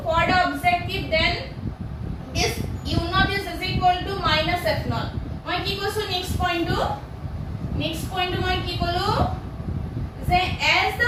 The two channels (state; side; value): identical; both; correlation 1.00